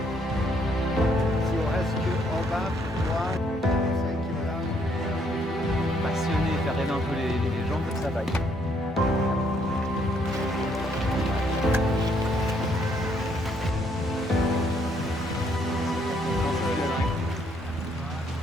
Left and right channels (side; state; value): both; normal; correlation 0.69